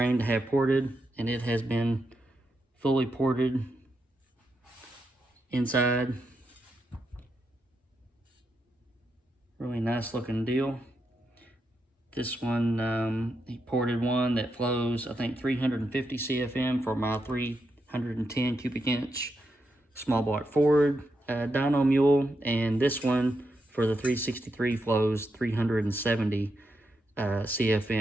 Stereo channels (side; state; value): both; normal; correlation 0.84